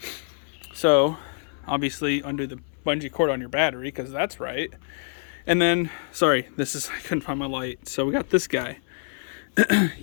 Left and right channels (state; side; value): silent; right; 61 dB below the other